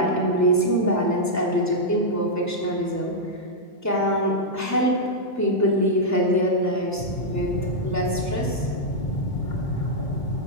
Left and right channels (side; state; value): both; normal; correlation -0.06